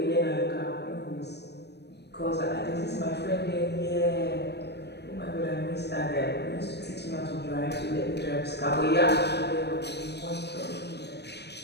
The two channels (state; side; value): late; right; 0.49 ms